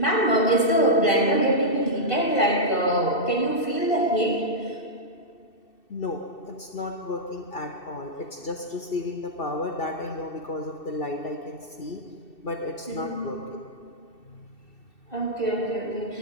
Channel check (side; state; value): right; late; 2.7 ms